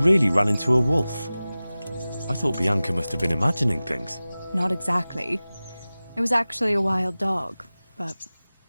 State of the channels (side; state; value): both; inverted; correlation -0.97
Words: ran into a wolf. I thought Bianca must have been imagining things. Not exactly. It was actually a wild dog, but